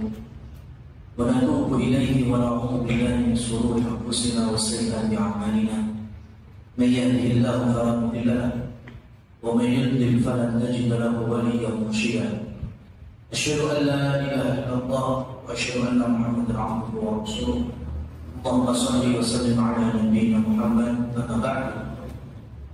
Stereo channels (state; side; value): identical; both; correlation 1.00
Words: wa natubu ilayhi wa na'udzu billahi min shururi anfusina wa sayyiati a'malina. May yahdihillahu fala mudilla lahu wa may yudlil falan tajida lahu waliyyan mursyida. Asyhadu an la ilaha illallah wa asyhadu anna Muhammadan abduhu wa rasuluh. Allahumma shalli wa sallim ala nabiyyina Muhammad. Amma ba'du.